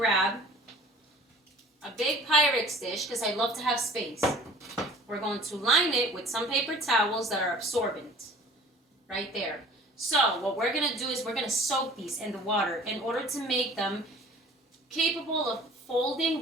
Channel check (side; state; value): both; normal; correlation 0.47